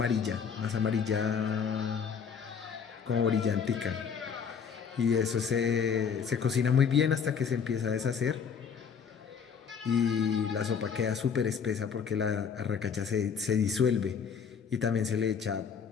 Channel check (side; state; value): right; quieter; 6.7 dB